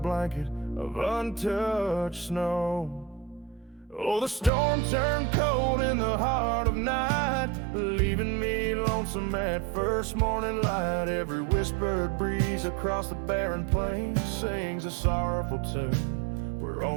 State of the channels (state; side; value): drops out; left; at 4.5 s